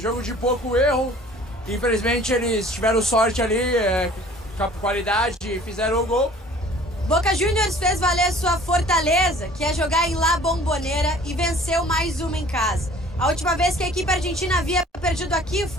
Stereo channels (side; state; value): both; normal; correlation 0.50